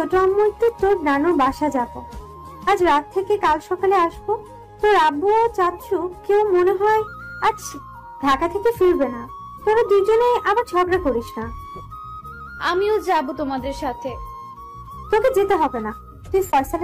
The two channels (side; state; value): both; identical; correlation 1.00